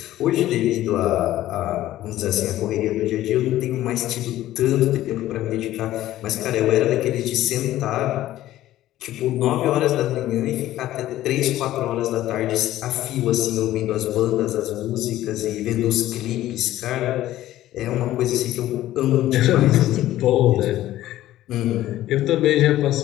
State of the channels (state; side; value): quieter; right; 14.3 dB